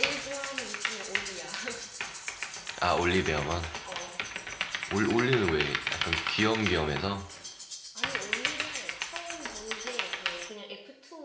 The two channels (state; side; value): identical; both; correlation 1.00